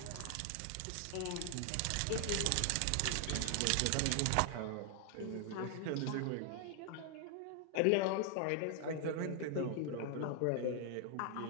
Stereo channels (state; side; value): different; both; correlation 0.00